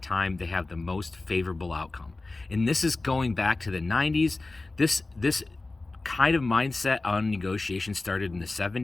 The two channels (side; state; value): right; quieter; 3.2 dB